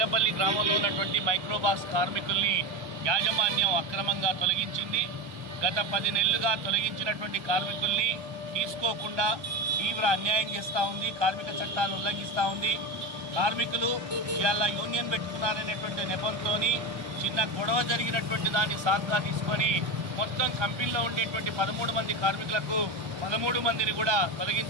గ్రామంలో ఉన్నటువంటి మైక్రోబాక్స్ కార్మికుల్ని యాజమాన్యం అక్రమంగా తొలగించింది. గత 10 నెలలుగా తొలగించినటువంటి కార్మికుల్ని తీసుకోకుండా తీవ్ర అన్యాయం చేస్తూ ఉంది. కార్మిక చట్టాలు ఉల్లంఘిస్తూ ఉంది. కార్మికులు ఇవాళ యూనియన్ పెట్టుకున్నారనేటువంటి నెపంతో చిన్న గొడవ జరిగినటువంటి దాన్ని సాకుగా తీసుకొని మొత్తం కంపెనీలో ఉండేటువంటి 13 మంది కార్మికులకు 13 మందిని కూడా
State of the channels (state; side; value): late; left; 1.2 ms